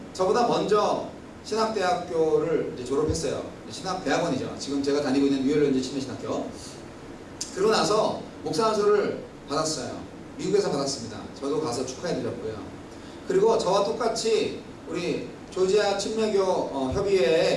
저보다 먼저 신학대학교를 이제 졸업했어요. 신학대학원이죠. 지금 제가 다니고 있는 뉴열랜드 침례신학교. 그러고 나서 목사 안수를 받았어요. 미국에서 받았습니다. 저도 가서 축하해드렸고요. 그리고 저와 똑같이 우리 조지아 침례교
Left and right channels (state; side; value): identical; both; correlation 1.00